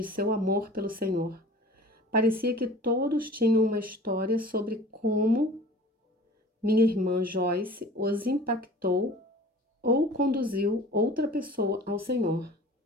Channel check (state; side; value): normal; both; correlation 0.44